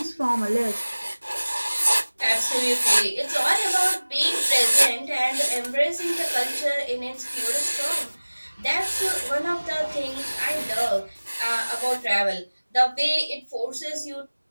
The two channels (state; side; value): inverted; both; correlation -1.00